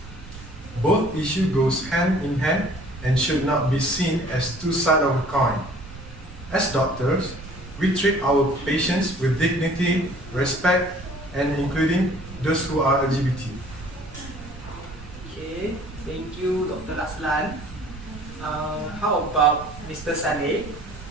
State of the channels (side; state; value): right; noise; rumble, 15 dB below the sound